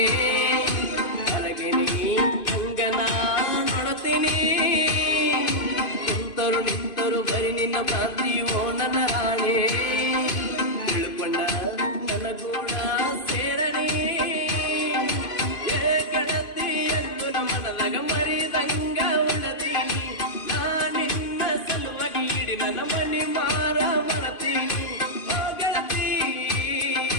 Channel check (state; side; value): late; right; 2.5 ms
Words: ಹೊರಗಿನಿ ಹಂಗನ ನೋಡುತ್ತೀನಿ ಕುಂತರು ನಿಂತರು ಬರಿ ನಿನ್ನ ಭ್ರಾಂತಿಯೋ ನನ್ನ ರಾಣೆ ತಿಳ್ಕೊಂಡ ನನಗೂಡ ಸೇರನೆ ಗೆಳತಿ ಎಂದು ನಮ್ಮನದಾಗ ಮರಿದಂಗ ಉಳದೀನಿ ನಾ ನಿನ್ನ ಸಲುವಾಗಿ ಇಡಿ ನನ್ನ ಮನಿ ಮಾರ ಮರತೀನಿ